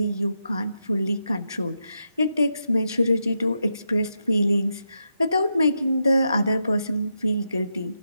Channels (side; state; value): both; inverted; correlation -0.84